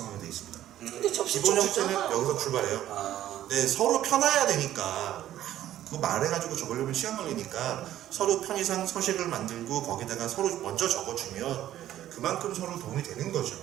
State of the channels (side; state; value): left; quieter; 12.6 dB